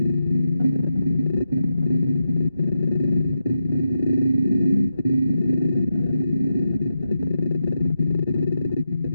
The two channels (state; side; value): inverted; both; correlation -0.87